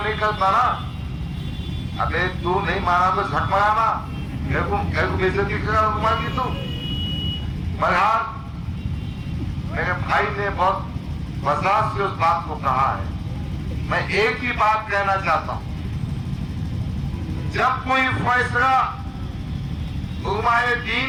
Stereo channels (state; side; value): identical; both; correlation 1.00